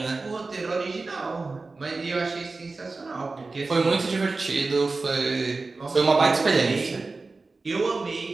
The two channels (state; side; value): quieter; left; 3.7 dB